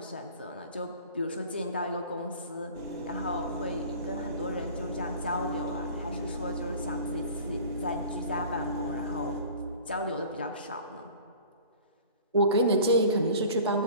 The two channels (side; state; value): both; inverted; correlation -0.44